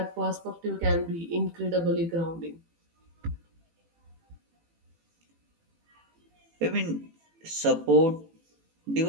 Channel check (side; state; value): left; late; 18 ms